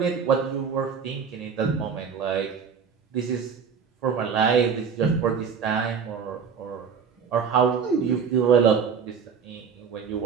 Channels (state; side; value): quieter; left; 6.4 dB